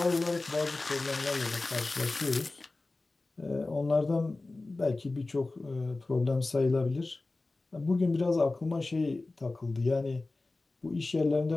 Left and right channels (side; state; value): right; quieter; 3.2 dB